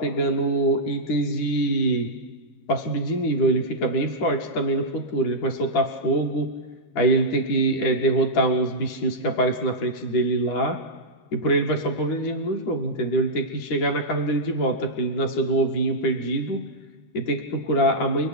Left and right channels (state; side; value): late; right; 13 ms